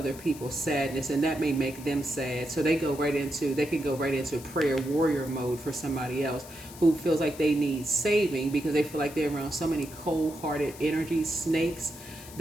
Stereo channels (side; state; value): left; noise; hiss, 17 dB below the sound